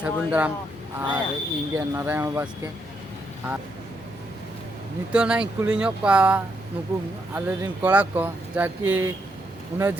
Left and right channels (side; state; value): both; normal; correlation 0.78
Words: दाराम और इंगे नारायण बास्के और नितो ना कुली नुकु आले रिन कोड़ा को जाकि उन्हें